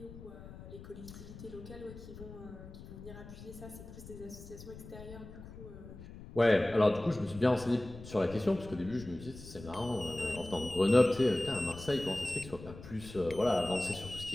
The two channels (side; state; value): left; noise; rumble, 14 dB below the sound